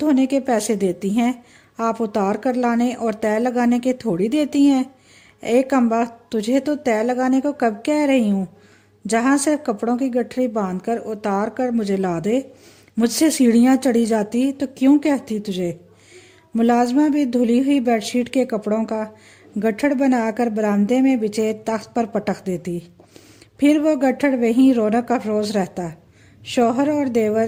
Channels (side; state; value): both; identical; correlation 1.00